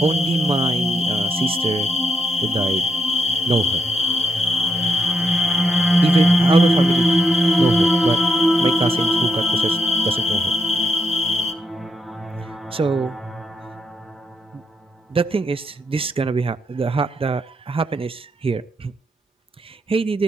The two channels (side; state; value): both; normal; correlation 0.79